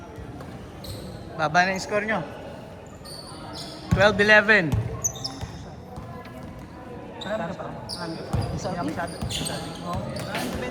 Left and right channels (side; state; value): both; identical; correlation 1.00